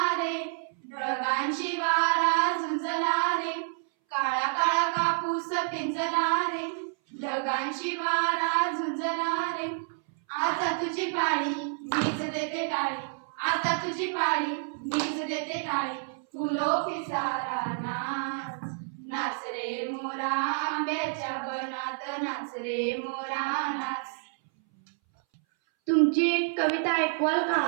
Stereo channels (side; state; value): left; silent; 59 dB below the other